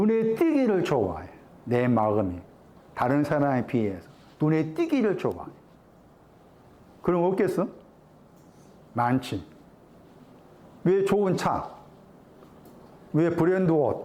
띄기를 좋아해. 내 마음이 다른 사람에 비해서 눈에 띄기를 좋아해. 그럼 없겠어? 많지. 왜 좋은 차? 왜 브랜드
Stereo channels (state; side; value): identical; both; correlation 1.00